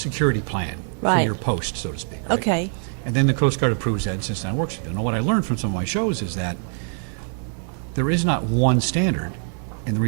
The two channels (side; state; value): left; silent; 58 dB below the other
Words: plan for your post, so to speak, right? Okay. And then the Coast Guard approves that and sits down and works with it. Now, what I learned from some of my shows is that there is not one standard, and the